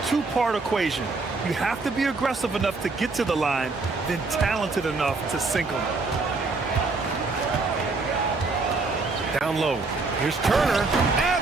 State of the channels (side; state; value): left; quieter; 3.8 dB